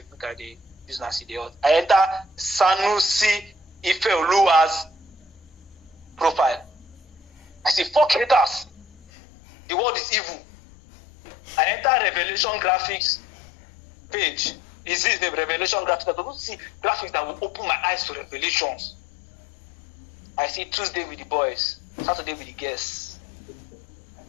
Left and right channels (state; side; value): drops out; right; at 9.1 s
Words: make I use Nancy. I enter Sanusi Ifeoluwa's profile. I say, fuck haters. The world is evil. I enter Revelation Graphics page. Is this the Revelation Graphics? I don't see graphics that will open my eyes to revelations. I see Tuesday with the boys, Saturday with the guests.